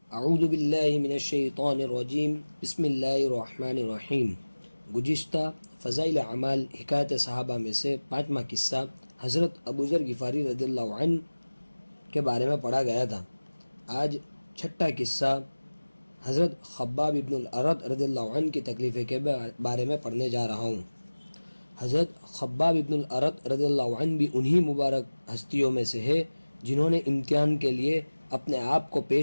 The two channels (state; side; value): inverted; both; correlation -1.00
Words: اعوذ باللہ من الشیطان الرجیم بسم اللہ الرحمن الرحیم۔ گزشتہ فضائل اعمال حکایت صحابہ میں سے 5واں قصہ حضرت ابوذر غفاری رضی اللہ عنہ کے بارے میں پڑھا گیا تھا۔ آج 6واں قصہ حضرت خباب ابن الارت رضی اللہ عنہ کی تکلیف کے بارے میں پڑھنے جا رہا ہوں۔ حضرت خباب ابن الارت رضی اللہ عنہ بھی انہی مبارک ہستیوں میں سے ہے جنہوں نے امتحان کے لیے اپنے آپ کو